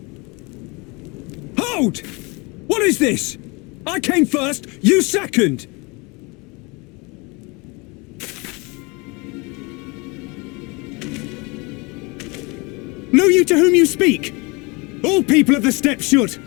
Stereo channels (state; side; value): quieter; right; 27.8 dB